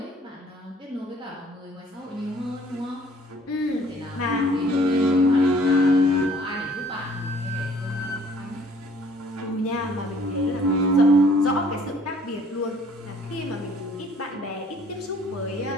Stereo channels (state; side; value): normal; both; correlation 0.57